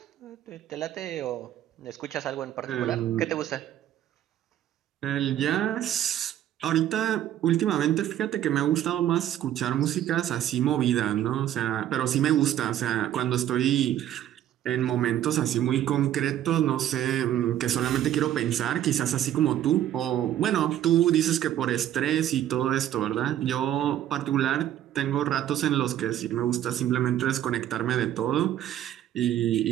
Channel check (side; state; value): left; quieter; 11.7 dB